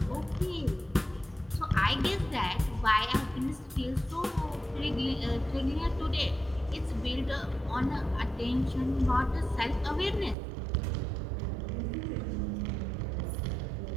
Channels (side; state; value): left; drops out; at 10.4 s